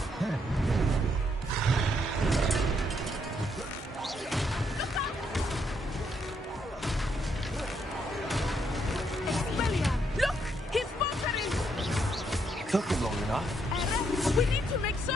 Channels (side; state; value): both; normal; correlation 0.75